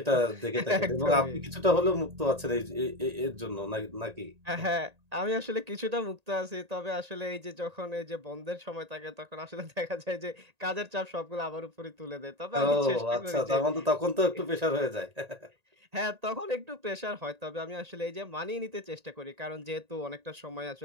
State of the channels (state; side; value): late; left; 1.8 ms